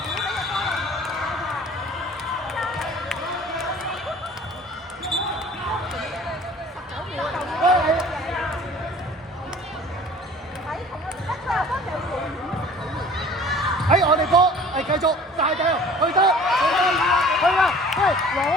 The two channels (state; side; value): normal; both; correlation 0.47